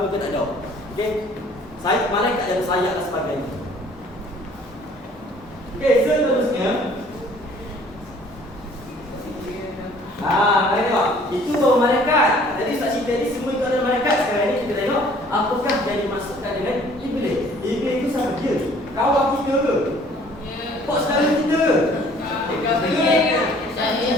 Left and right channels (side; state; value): both; normal; correlation 0.55